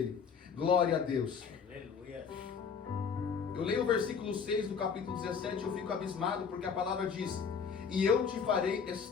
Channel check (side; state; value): right; quieter; 6.3 dB